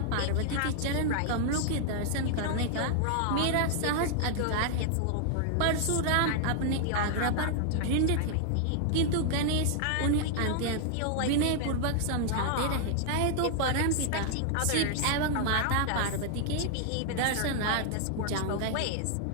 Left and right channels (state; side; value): different; both; correlation -0.01